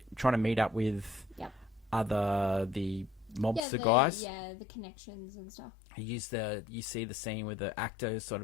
to meet up with the mobster guys. Yeah, the connections and stuff. You see the scene where the actors sort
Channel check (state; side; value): drops out; right; at 3.7 s